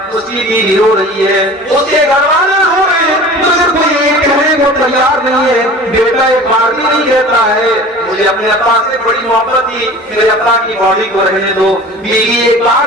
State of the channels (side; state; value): both; normal; correlation 0.41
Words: اس کی بیوی رو رہی ہے، اس کے گھر والے رو رہے ہیں، مگر کوئی یہ کہنے کو تیار نہیں ہے۔ بیٹا ایک بار بھی نہیں کہتا ہے مجھے اپنے ابا سے بڑی محبت تھی، میرے ابا کی باڈی کو رہنے دو۔ بیوی ایک